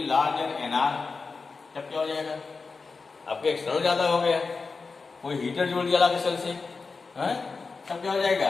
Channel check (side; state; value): right; quieter; 4.4 dB